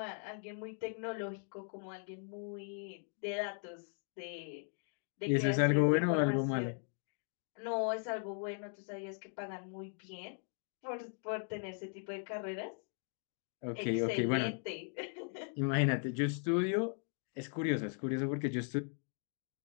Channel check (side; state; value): right; silent; 52 dB below the other